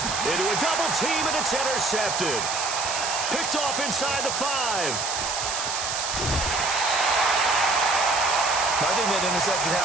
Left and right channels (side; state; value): right; noise; hiss, 3 dB below the sound